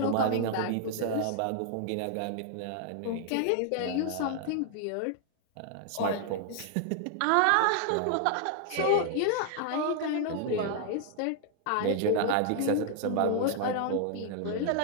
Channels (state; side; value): different; both; correlation 0.00